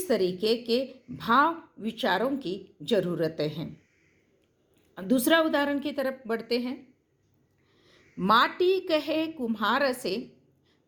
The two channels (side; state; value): both; identical; correlation 1.00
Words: तरीके के भाव विचारों की ज़रूरतें हैं। दूसरा उदाहरण की तरफ बढ़ते हैं। माटी कहे कुम्हार से,